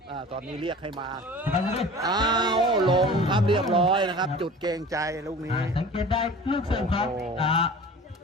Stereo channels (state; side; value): normal; both; correlation 0.41